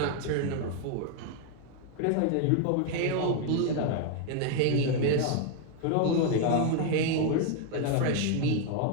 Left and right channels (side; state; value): both; different; correlation 0.01